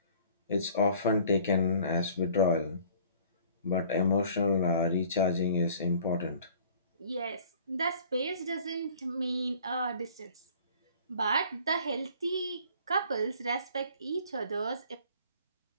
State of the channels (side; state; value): both; inverted; correlation -0.52